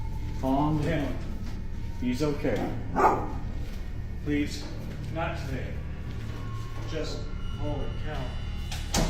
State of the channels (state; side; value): identical; both; correlation 1.00